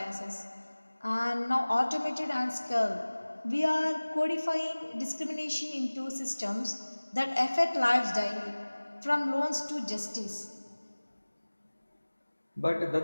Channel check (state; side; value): inverted; both; correlation -1.00